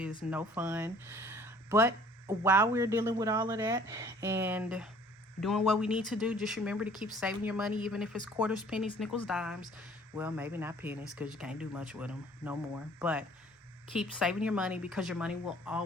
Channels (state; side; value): normal; both; correlation 0.54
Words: no fun. But while we're dealing with all of that and doing what we need to do, just remember to keep saving your money, even if it's quarters, pennies, nickels, dimes. Well, maybe not pennies, because you can't do much with them no more. But keep saving your money, because your money will